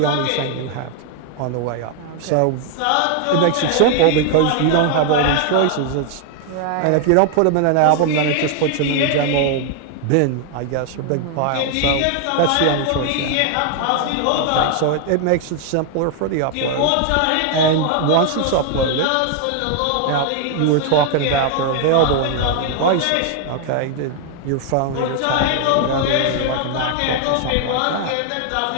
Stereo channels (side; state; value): both; different; correlation 0.00